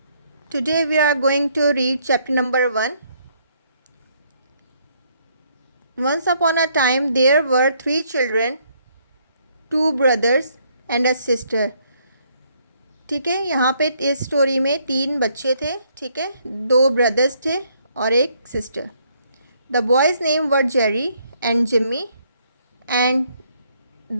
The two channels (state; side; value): inverted; both; correlation -0.69